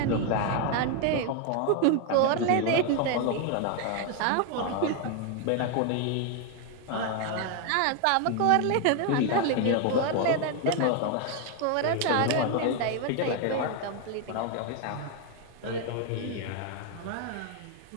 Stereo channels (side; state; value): both; different; correlation 0.01